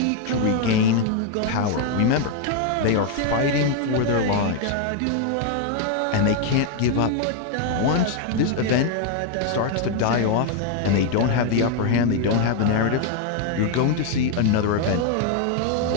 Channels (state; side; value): different; both; correlation 0.01